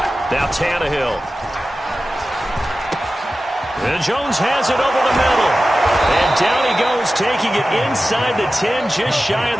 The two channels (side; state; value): both; normal; correlation 0.94